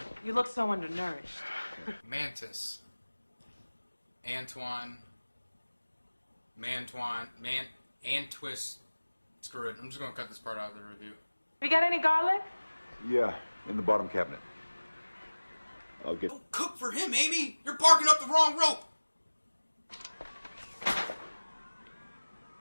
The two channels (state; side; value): inverted; both; correlation -1.00